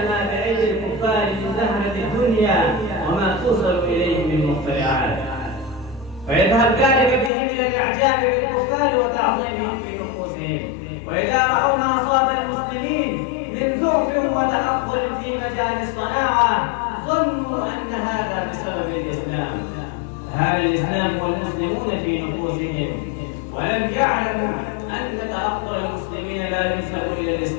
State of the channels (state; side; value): drops out; right; at 7.3 s